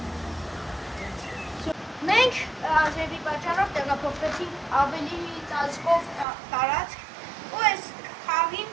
Մենք ազերվի պատճառով տեղափոխվեցինք ավելի ծածկով տարածք ու այս խաղին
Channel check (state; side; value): drops out; left; at 6.2 s